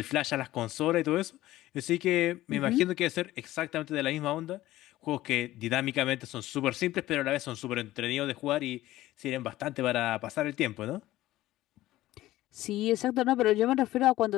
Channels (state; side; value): quieter; right; 15.8 dB